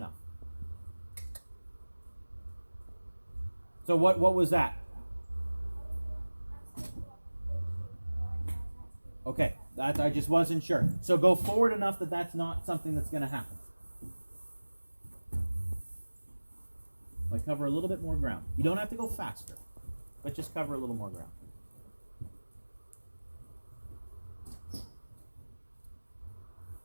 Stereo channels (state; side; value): inverted; both; correlation -1.00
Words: So what was that? Okay, that I just wasn't sure. So go forward enough that that's not something that's going to happen. Like cover a little bit more ground. You don't have to go faster, but just cover a little more ground.